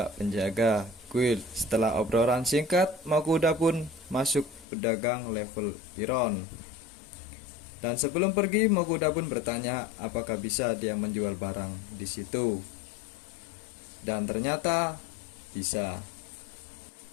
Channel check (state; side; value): drops out; right; at 4.7 s